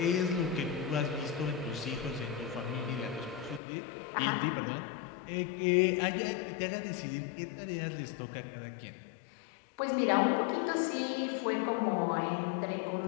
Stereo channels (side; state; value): right; drops out; at 3.6 s